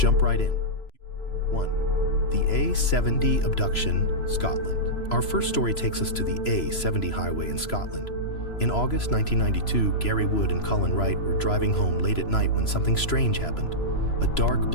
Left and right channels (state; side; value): late; right; 3.0 ms